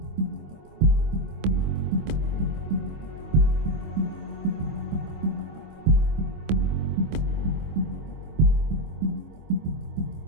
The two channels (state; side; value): late; left; 25 ms